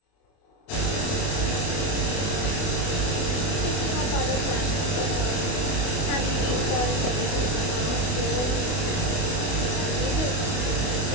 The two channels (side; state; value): right; late; 28 ms